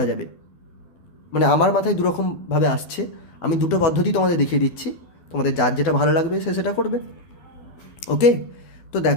যাবে, মানে আমার মাথায় দুরকমভাবে আসছে, আমি দুটো পদ্ধতি তোমাদের দেখিয়ে দিচ্ছি, তোমাদের যার যেটা ভালো লাগবে সে সেটা করবে। ওকে, তো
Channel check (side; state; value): right; late; 12 ms